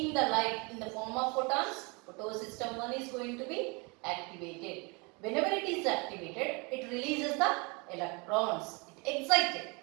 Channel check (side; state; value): left; quieter; 29.6 dB